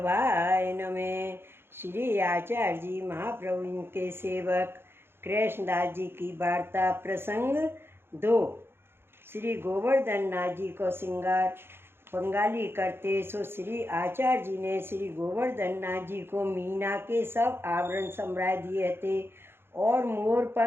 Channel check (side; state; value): left; late; 0.11 ms